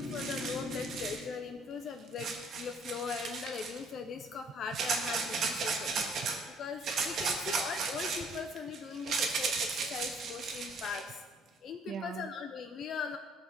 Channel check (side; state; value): both; normal; correlation 0.60